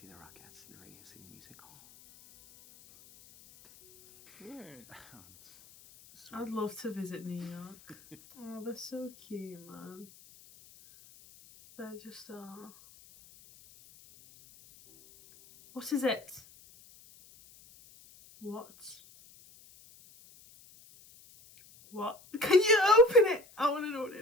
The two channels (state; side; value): noise; left; hiss, 24 dB below the sound